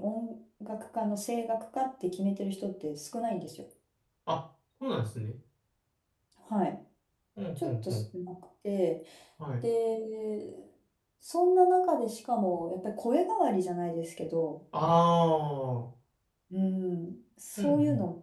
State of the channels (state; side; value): identical; both; correlation 1.00